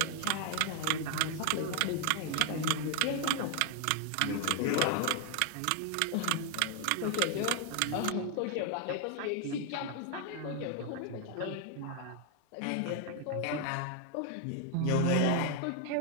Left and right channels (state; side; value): different; both; correlation 0.00